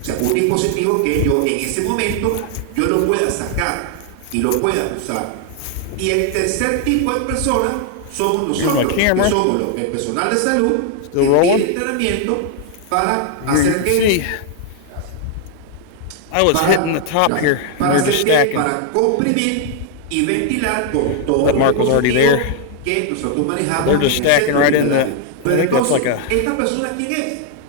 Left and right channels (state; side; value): different; both; correlation 0.00